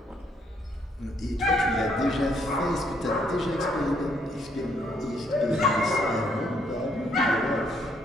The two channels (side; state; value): both; normal; correlation 0.70